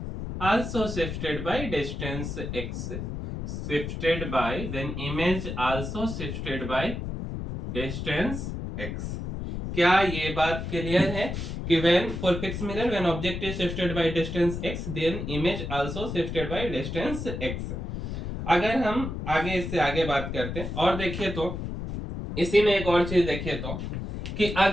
also shifted by distance x, then image also shifted by distance x। क्या ये बात क्लियर है कि when for fixed mirror when object is shifted by distance x then image also shifted by distance x। अगर हम आगे इससे आगे बात करते हैं और देखिए तो इसी में एक और चीज देखिए तो कि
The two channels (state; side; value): noise; left; rumble, 5 dB below the sound